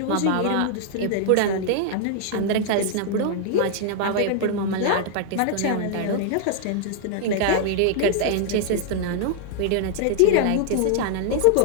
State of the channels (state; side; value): different; both; correlation 0.00